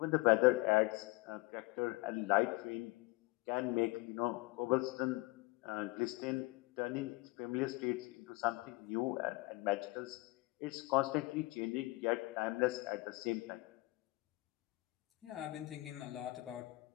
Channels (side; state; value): right; quieter; 22.0 dB